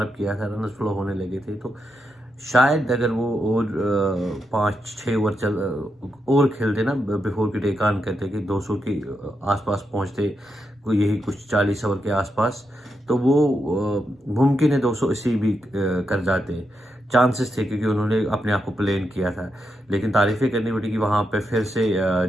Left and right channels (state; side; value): normal; both; correlation 0.84